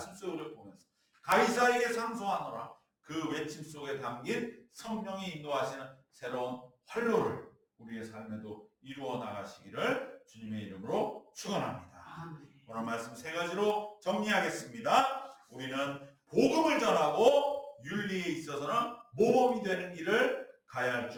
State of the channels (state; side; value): identical; both; correlation 1.00